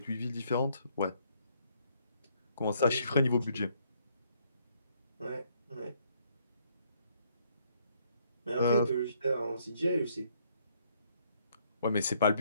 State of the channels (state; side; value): inverted; both; correlation -0.68